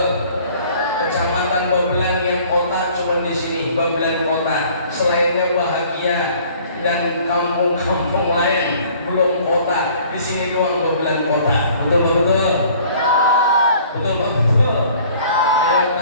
Kecamatan Babelan yang kota cuma di sini Babelan Kota. Selainnya bahagia dan kampung-kampung lain belum kota. Di sini doang Babelan Kota. Betul. Ayo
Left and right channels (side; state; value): both; inverted; correlation -0.53